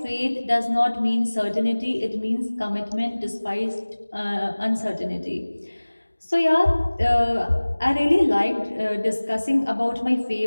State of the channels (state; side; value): inverted; both; correlation -1.00